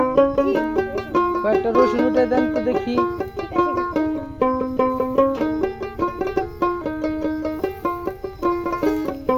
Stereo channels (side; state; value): both; identical; correlation 1.00